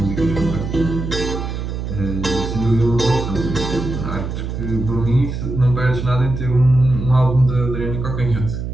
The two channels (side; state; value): right; noise; hum, 5 dB below the sound